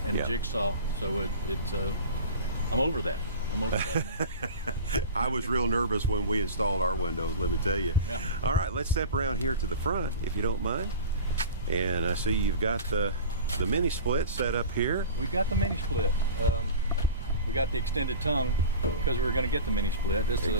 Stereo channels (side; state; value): both; inverted; correlation -0.34